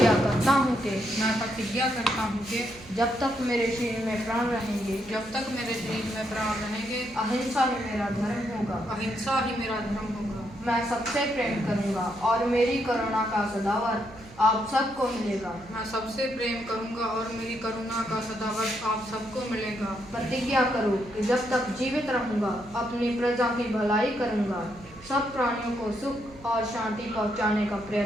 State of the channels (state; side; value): noise; right; hum, 20 dB below the sound